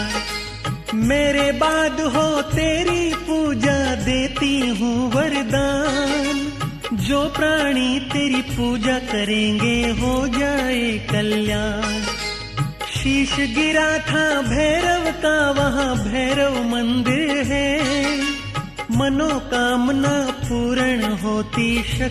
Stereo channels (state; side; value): identical; both; correlation 1.00